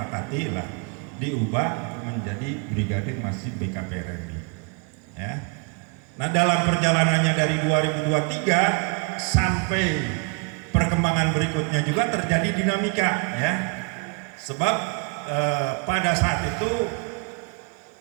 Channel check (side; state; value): left; quieter; 34.5 dB